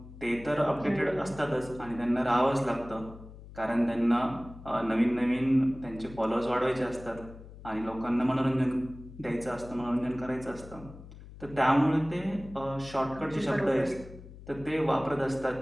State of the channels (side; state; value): left; noise; hum, 16 dB below the sound